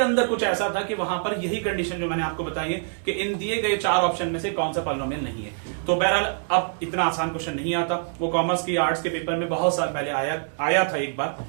कुछ ऐसा था कि वहां पर यही कंडीशन जो मैंने आपको बताई है कि इन दिए गए 4 ऑप्शन में से कौन सा पॉलिनोमियल नहीं है। तो बहरहाल अब इतना आसान क्वेश्चन नहीं आता, वो कॉमर्स की आर्ट्स के पेपर में बहुत साल पहले आया था एक बार,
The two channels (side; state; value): left; silent; digital silence